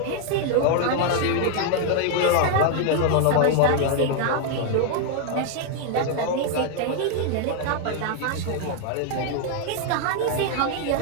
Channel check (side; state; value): both; different; correlation 0.00